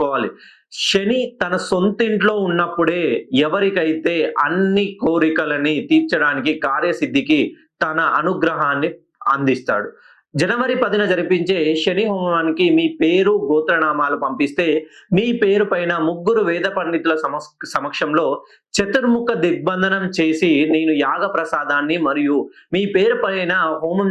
శని తన సొంతింట్లో ఉన్నప్పుడే ఎవరికైతే అన్ని కోరికలని తీర్చడానికి, కార్యసిద్ధికి తన అనుగ్రహాన్ని అందిస్తాడు. జనవరి 10న జరిపించే శని హోమానికి మీ పేరు, గోత్రనామాలు పంపిస్తే, మీ పేరు పైన ముగ్గురు వేద పండితుల సమక్షంలో చతుర్ముఖ దిగ్బంధనం చేసి, నేను యాగ ప్రసాదాన్ని మరియు మీ పేరు పైన హోమం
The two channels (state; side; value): identical; both; correlation 1.00